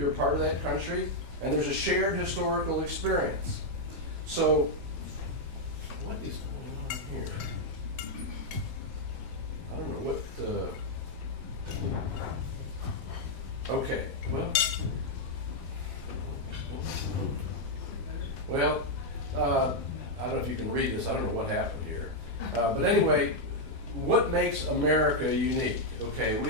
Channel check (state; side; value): late; left; 7.5 ms